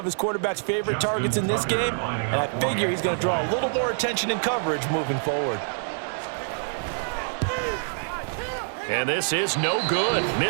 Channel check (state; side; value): silent; left; 58 dB below the other